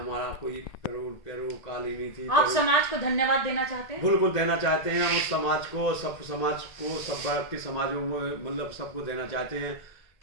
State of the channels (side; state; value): right; late; 1.9 ms